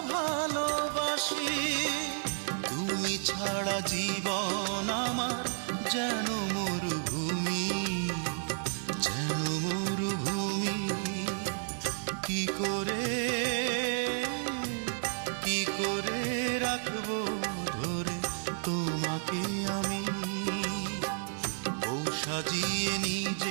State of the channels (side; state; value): left; silent; digital silence